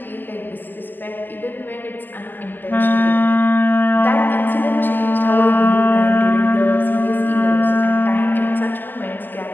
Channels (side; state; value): right; late; 0.089 ms